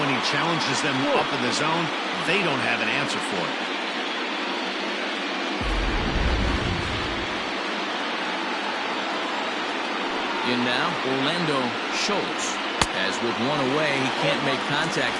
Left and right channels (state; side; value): identical; both; correlation 1.00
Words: he challenges them up in the zone, they don't have an answer for it. In now, Orlando Schultz. As with 1 away, he can't make contact